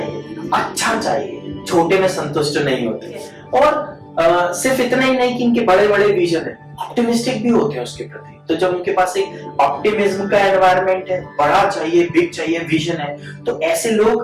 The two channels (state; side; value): identical; both; correlation 1.00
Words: अच्छा चाहिए, छोटे में संतुष्ट नहीं होते। और सिर्फ इतना ही नहीं कि इनके बड़े बड़े विजन है, ऑप्टिमिस्टिक भी होते हैं उसके प्रति। तो जब उनके पास एक ऑप्टिमिज्म का एनवायरनमेंट है, बड़ा चाहिए, बिग चाहिए, विजन है, तो ऐसे